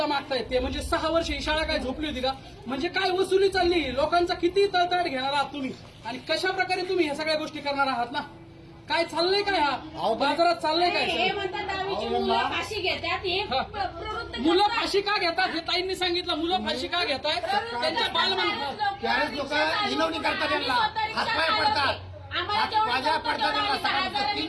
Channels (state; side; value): identical; both; correlation 1.00